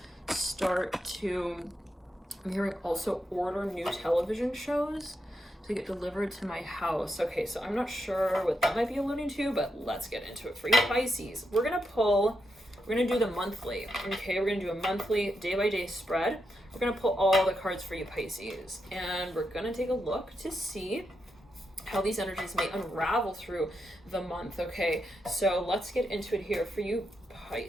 start to, I'm hearing also order new television shows to get delivered to my house. Okay, so I'm not sure what that might be alluding to, but let's get into it for you Pisces. We're gonna do the monthly. Okay, we're gonna do a monthly day-by-day spread. We're gonna pull all the cards for you Pisces, and we're gonna take a look to see how these energies may unravel through the month. Okay, so let's get into it here for you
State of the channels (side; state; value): both; normal; correlation 0.84